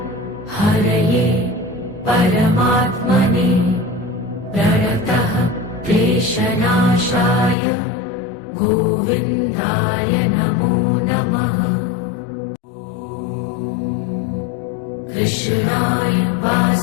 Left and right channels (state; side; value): drops out; right; at 7.6 s